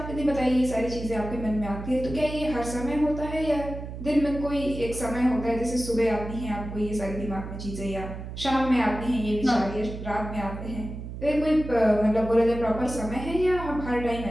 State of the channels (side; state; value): right; noise; hum, 9 dB below the sound